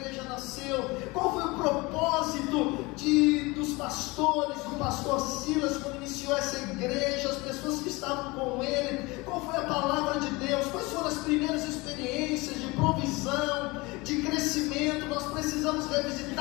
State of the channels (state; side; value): quieter; right; 23.7 dB